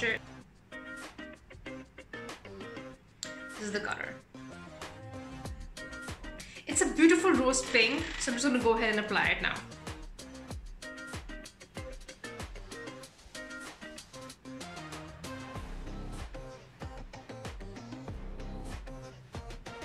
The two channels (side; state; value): both; identical; correlation 1.00